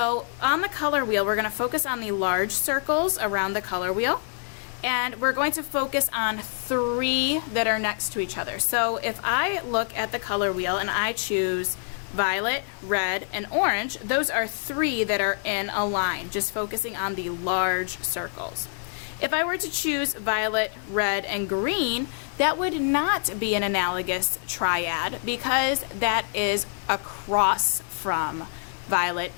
on the color wheel, we're going to focus on the large circles around the color wheel, and we're going to focus on three that are next to each other. So if I look at the color wheel and I choose violet, red, and orange, those are three that are in a line, just focusing on the large circles. If I were to choose violet, red, and green, that would not be an analogous triad because that is across from violet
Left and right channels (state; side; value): silent; right; 61 dB below the other